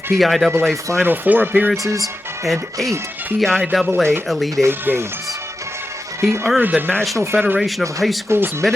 PIAA Final Four appearances, and 8 PIAA Elite 8 games. He earned the National Federation of High Schools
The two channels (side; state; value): both; normal; correlation 0.91